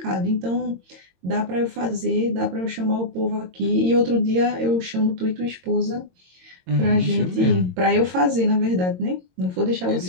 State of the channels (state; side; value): late; left; 22 ms